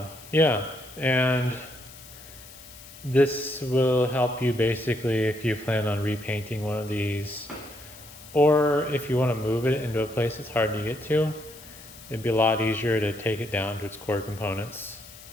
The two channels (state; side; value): noise; left; hiss, 18 dB below the sound